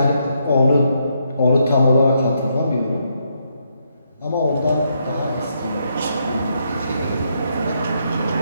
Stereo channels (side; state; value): both; inverted; correlation -0.77